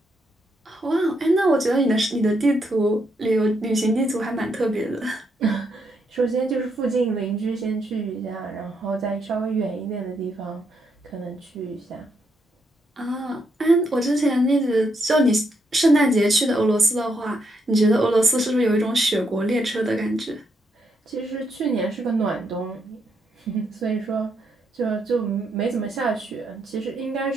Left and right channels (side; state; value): both; normal; correlation 0.78